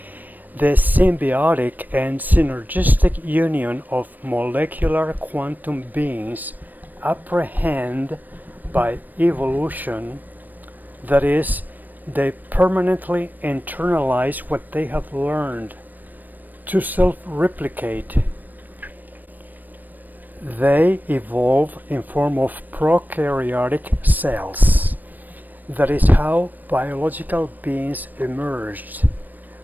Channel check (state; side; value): late; left; 0.087 ms